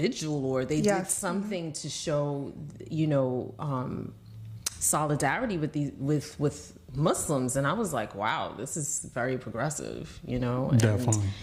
or they did something to show, solidarity with Muslims. And I was like, wow, this is very progressive, And definitely.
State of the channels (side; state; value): both; identical; correlation 1.00